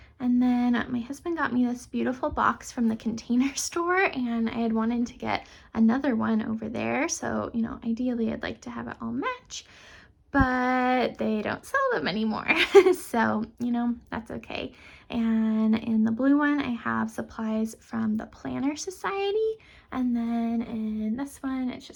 And then my husband got me this beautiful box from the Container Store, and I had wanted to get another one over there. So, ideally I'd like to have it all match, but they don't sell them anymore. So, that's okay. And in the blue one, I have supplies from the Planner Society. And then in this one, it's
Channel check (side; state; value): both; identical; correlation 1.00